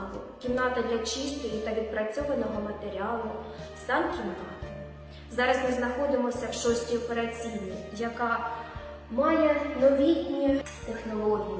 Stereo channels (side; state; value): both; identical; correlation 1.00